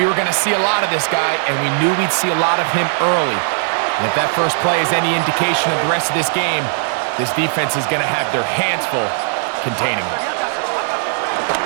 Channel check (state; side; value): silent; left; 65 dB below the other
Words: were going to see a lot of this guy, and we knew we'd see a lot of him early. And if that first play is any indication of the rest of this game, this defense is going to have their hands full containing him.